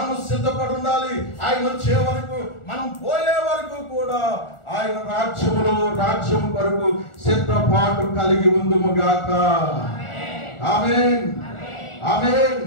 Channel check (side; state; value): right; late; 1.4 ms